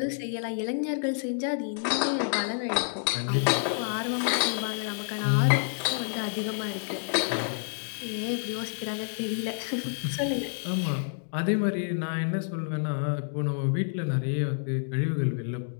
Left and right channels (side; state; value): right; silent; digital silence